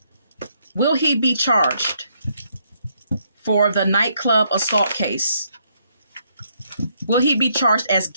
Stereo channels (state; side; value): inverted; both; correlation -0.73